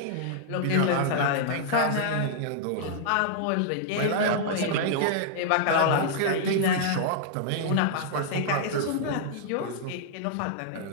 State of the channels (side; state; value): both; different; correlation -0.01